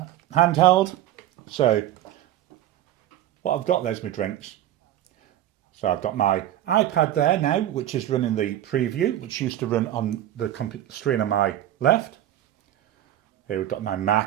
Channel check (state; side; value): quieter; left; 12.6 dB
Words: handheld. So what I've got there's my drinks. So I've got my iPad there now, which is running the preview, which used to run on the screen on my left. Here we've got my